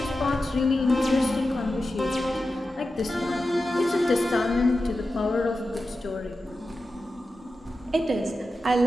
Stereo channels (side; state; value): both; normal; correlation 0.92